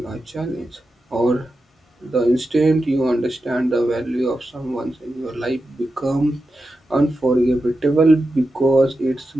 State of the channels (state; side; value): normal; both; correlation 0.90